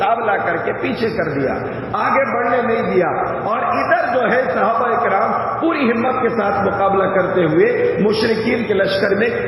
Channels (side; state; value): both; identical; correlation 1.00